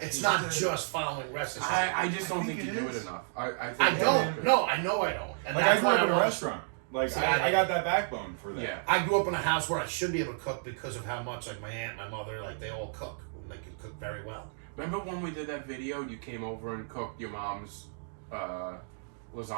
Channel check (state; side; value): silent; left; digital silence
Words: Yeah. not just following recipes. I just don't I think think you it do it is. enough. I I think don't. No, I know I don't. And Like I that's grew why up in a want- restaurant. Like See, I got that backbone for that. Yeah. I grew up in a house where I should be able to cook because of how much like my aunt, my mother, like they all cook. They can cook very well. Remember when we did that video? You came over and cooked your mom's